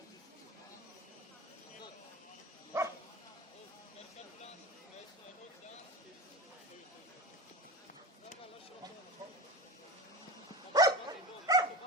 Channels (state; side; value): normal; both; correlation 0.28